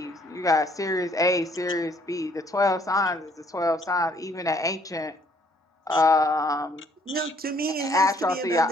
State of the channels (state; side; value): normal; both; correlation 0.64